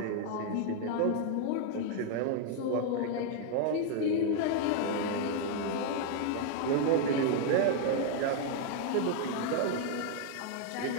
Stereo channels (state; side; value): different; both; correlation 0.00